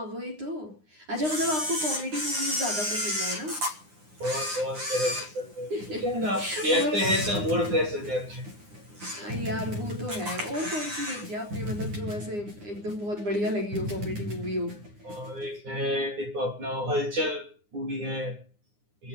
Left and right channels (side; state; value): left; late; 9.7 ms